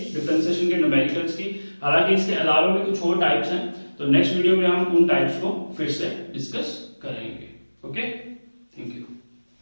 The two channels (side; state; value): both; inverted; correlation -1.00